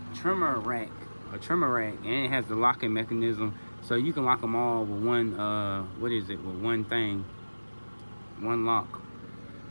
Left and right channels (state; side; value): inverted; both; correlation -1.00